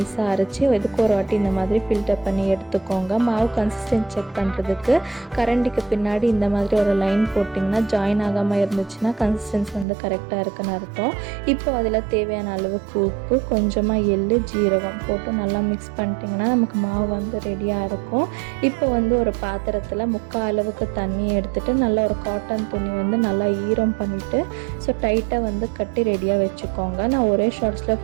அரைச்சி எதுக்கு ஒரு வாட்டி இந்த மாதிரி ஃபில்டர் பண்ணி எடுத்துக்கோங்க. மாவு கன்சிஸ்டன்ட் செக் பண்ணுறதுக்கு கரண்டிக்கு பின்னாடி இந்த மாதிரி ஒரு லைன் போட்டிங்கன்னா ஜாயின் ஆகாமல் இருந்துச்சுன்னா கன்சிஸ்டன்சி கரெக்டாக இருக்குன்னு அர்த்தம். இப்போ அதில் தேவையான அளவுக்கு உப்பு, கொஞ்சமாக எள்ளு, ஜீரகம் போட்டு நல்லா மிக்ஸ் பண்ணிட்டிங்கன்னா நமக்கு மாவு ரெடியாக இருக்கும். இப்போ ஒரு பாத்திரத்தில் 3/4 அளவுக்கு தண்ணியை எடுத்துகிட்டு நல்லா ஒரு காட்டன் துணி நல்லா ஈரம் பண்ணிவிட்டு ஸோ டைட்டாக கட்டி ரெடியாக வச்சுக்கோங்க. நான் ஒரே ஷார்ட்ஸில்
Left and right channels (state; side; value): drops out; left; at 9.9 s